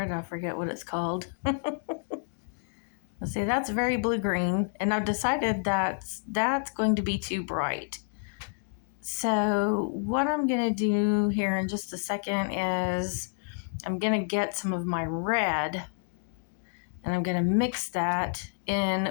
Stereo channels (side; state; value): right; silent; digital silence